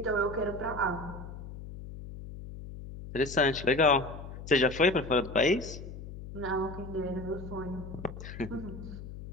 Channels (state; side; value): noise; left; hum, 11 dB below the sound